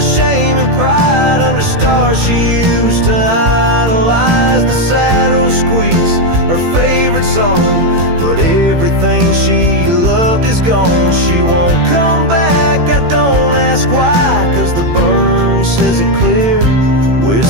and pride under stars she used to idolize. The saddle squeaks song, but everything she loved is gone. She won't come back, I don't ask why, 'cause the burn says it clear,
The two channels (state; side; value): late; left; 18 ms